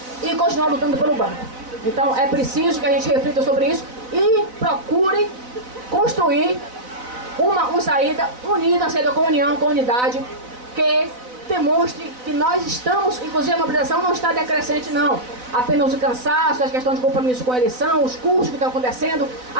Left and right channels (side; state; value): left; late; 4.0 ms